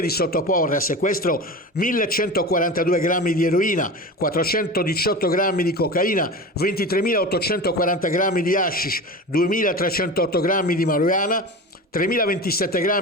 di sottoporre a sequestro 1142 grammi di eroina, 418 grammi di cocaina, 23.840 grammi di hashish, 2.308 grammi di marijuana, 3.027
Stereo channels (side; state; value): both; normal; correlation 0.30